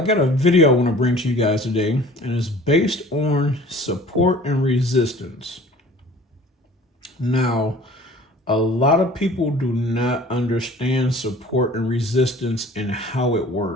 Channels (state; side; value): normal; both; correlation 0.47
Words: got a video I want to bring to you guys today, and it's based on support and resistance. Now, a lot of people do not understand support and resistance and how it